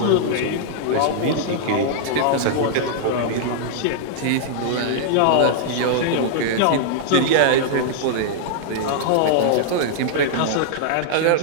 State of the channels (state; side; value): different; both; correlation -0.01